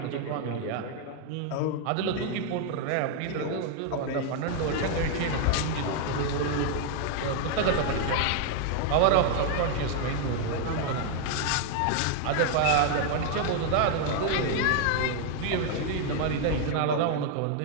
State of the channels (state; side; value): different; both; correlation 0.00